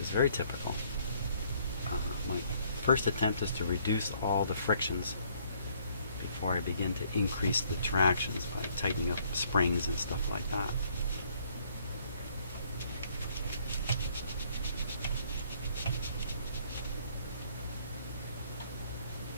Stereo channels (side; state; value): both; inverted; correlation -0.64